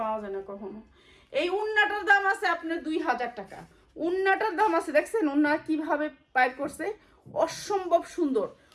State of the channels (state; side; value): identical; both; correlation 1.00